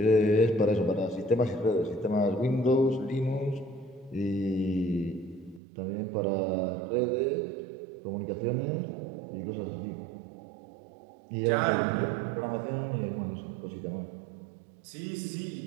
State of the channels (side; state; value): left; drops out; at 5.6 s